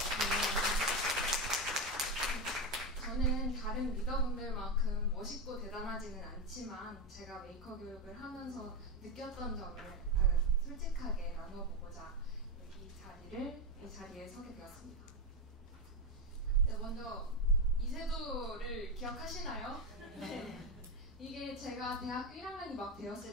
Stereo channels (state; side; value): normal; both; correlation 0.11